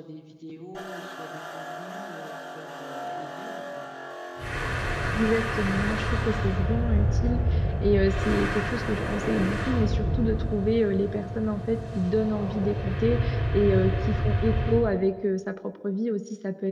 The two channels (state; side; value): identical; both; correlation 1.00